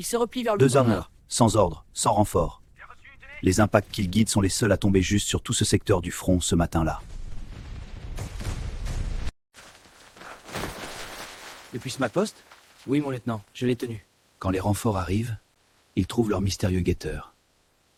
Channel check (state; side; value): identical; both; correlation 1.00